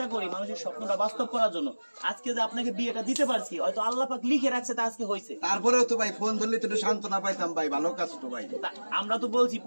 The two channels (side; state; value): both; inverted; correlation -1.00